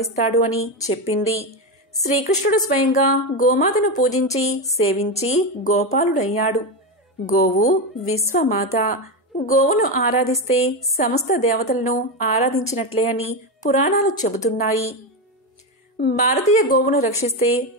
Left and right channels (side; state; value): both; normal; correlation 0.13